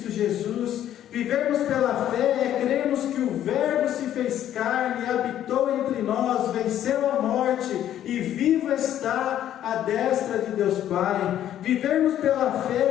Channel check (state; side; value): quieter; right; 11.3 dB